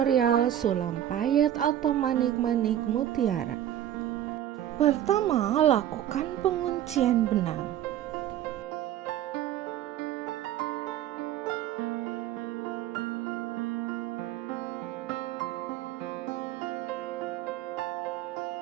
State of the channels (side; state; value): left; quieter; 11.6 dB